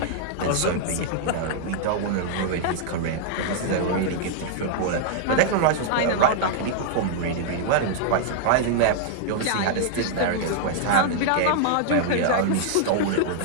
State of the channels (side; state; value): both; different; correlation -0.01